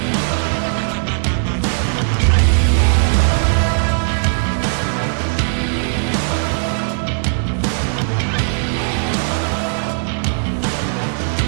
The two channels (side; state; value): left; silent; digital silence